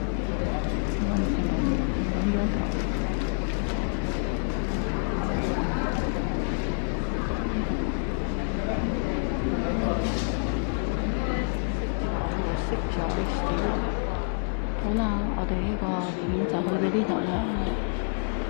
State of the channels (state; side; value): silent; right; 60 dB below the other